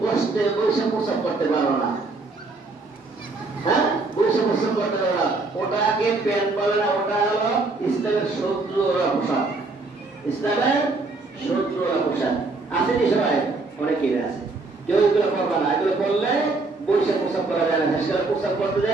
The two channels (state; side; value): quieter; left; 3.5 dB